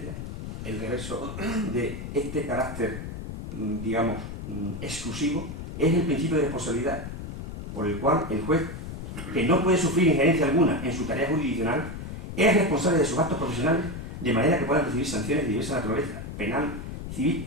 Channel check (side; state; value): left; noise; rumble, 8 dB below the sound